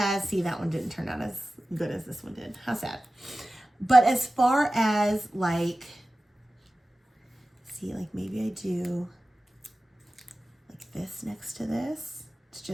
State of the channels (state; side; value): normal; both; correlation 0.96